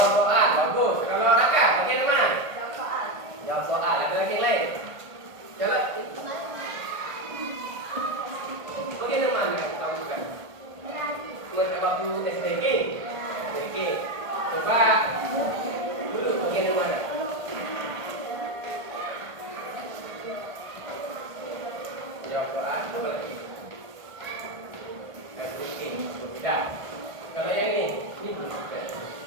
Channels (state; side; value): late; left; 1.5 ms